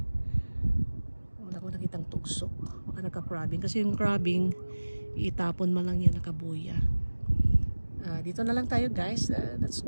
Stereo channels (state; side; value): inverted; both; correlation -1.00